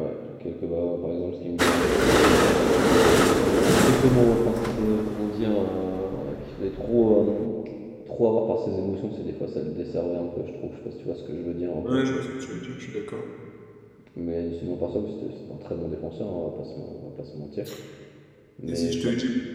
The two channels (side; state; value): both; identical; correlation 1.00